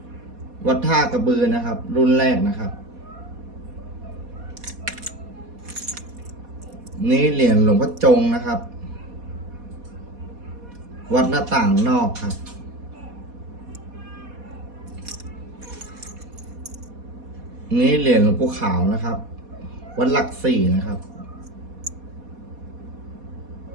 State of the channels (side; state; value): left; late; 4.2 ms